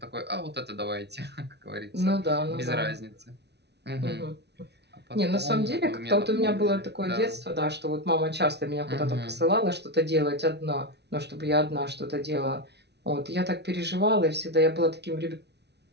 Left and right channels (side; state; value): left; late; 0.49 ms